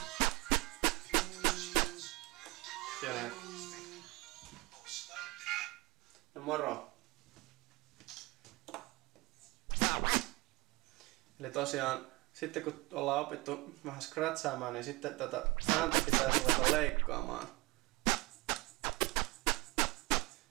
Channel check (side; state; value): left; quieter; 23.6 dB